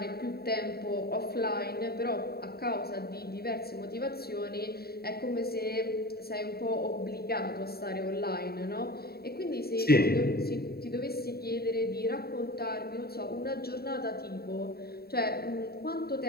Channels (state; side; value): late; right; 0.45 ms